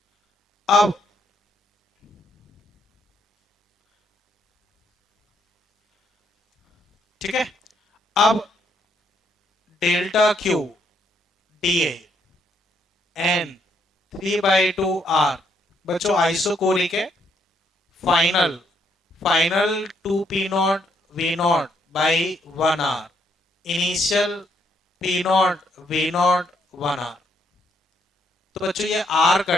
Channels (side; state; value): both; normal; correlation 0.73